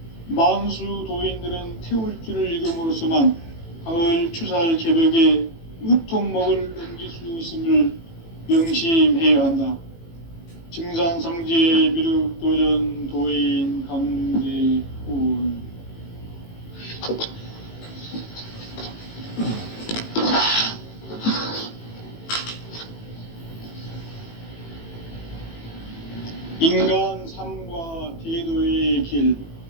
만수 도인들은 태울주를 읽음으로써만 가을 추살 개벽의 의통목을 넘길 수 있음을 명심해야 한다. 증산상제 미륵도전 도인 강대훈. 인간 삶과 대도의 길.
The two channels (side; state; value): right; late; 18 ms